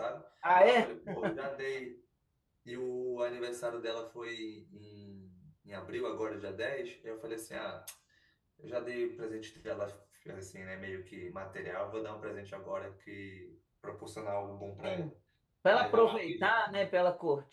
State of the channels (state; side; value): identical; both; correlation 1.00